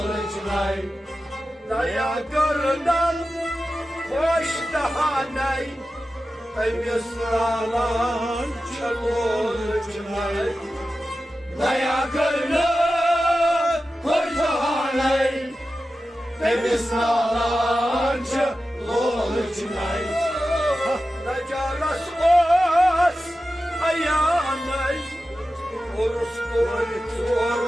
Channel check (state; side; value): normal; both; correlation 0.93